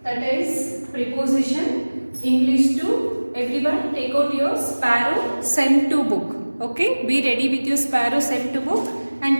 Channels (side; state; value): both; inverted; correlation -1.00